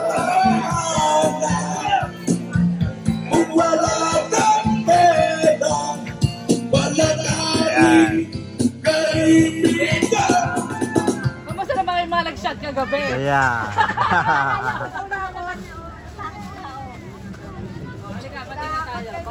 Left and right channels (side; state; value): both; identical; correlation 1.00